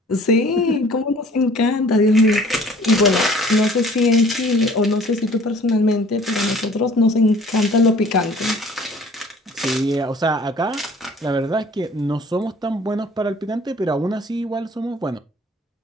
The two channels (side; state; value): both; normal; correlation 0.51